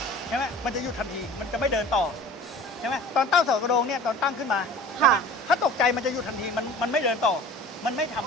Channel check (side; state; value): both; normal; correlation 0.43